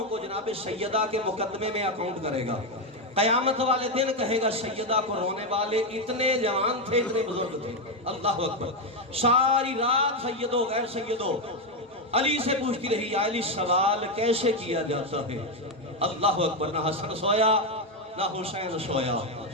کو جناب سیدہ کے مقدمے میں اکاؤنٹ کرے گا قیامت والے دن کہے گا سیدہ کو رونے والے اتنے جوان تھے اتنے بزرگ تھے اللہ اکبر ساری رات سیدو غیر سیدو علی سے پوچھتی رہی یا علی سوال کیسے کیا جاتا ہے اللہ اکبر نہ حسن سویا نہ حسین سویا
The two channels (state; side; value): normal; both; correlation 0.07